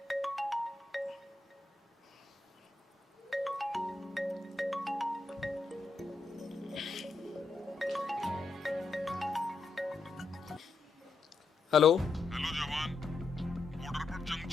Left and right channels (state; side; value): quieter; right; 3.7 dB